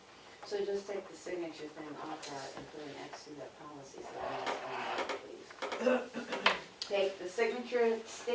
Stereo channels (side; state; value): both; identical; correlation 1.00